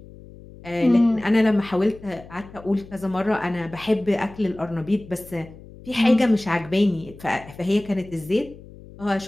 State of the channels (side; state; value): left; noise; hum, 19 dB below the sound